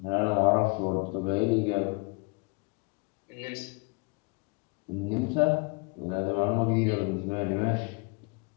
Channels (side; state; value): right; quieter; 30.9 dB